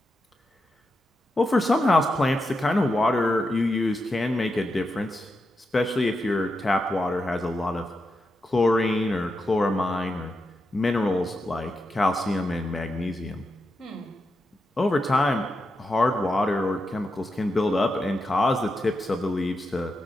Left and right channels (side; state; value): both; normal; correlation 0.87